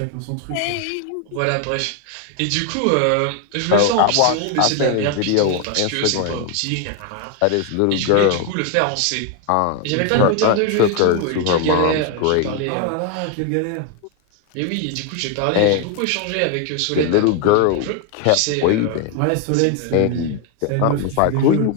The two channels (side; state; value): both; different; correlation 0.01